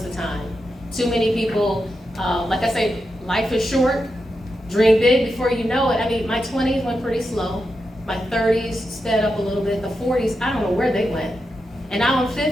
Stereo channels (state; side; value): normal; both; correlation 0.87